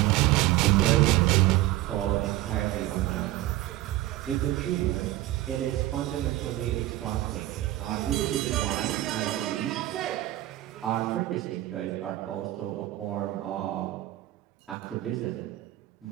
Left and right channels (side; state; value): left; quieter; 15.8 dB